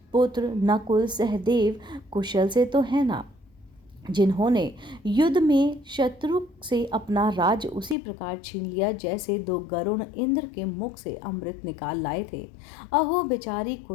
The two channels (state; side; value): drops out; right; at 8.0 s